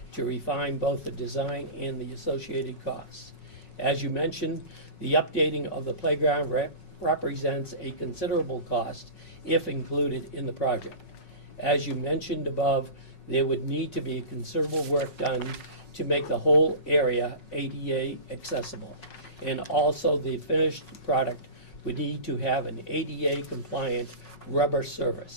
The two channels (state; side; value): late; right; 5.4 ms